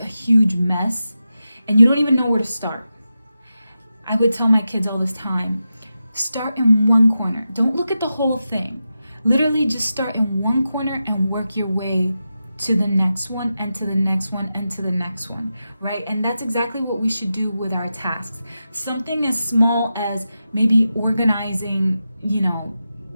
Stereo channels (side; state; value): both; inverted; correlation -0.90